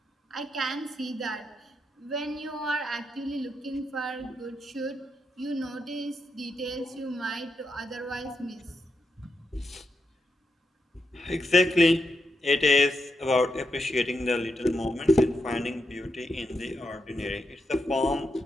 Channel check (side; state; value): both; normal; correlation 0.84